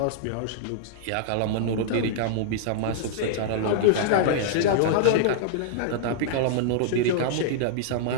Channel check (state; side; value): different; both; correlation -0.01